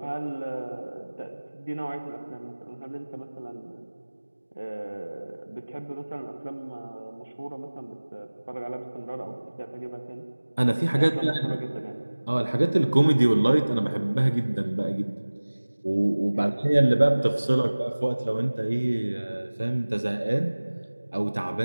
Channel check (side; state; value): both; inverted; correlation -1.00